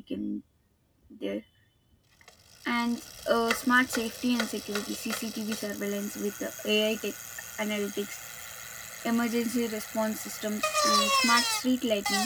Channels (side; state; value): both; identical; correlation 1.00